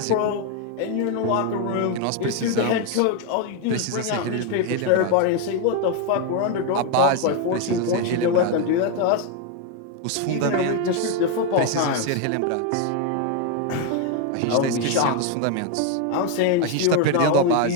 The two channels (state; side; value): different; both; correlation 0.01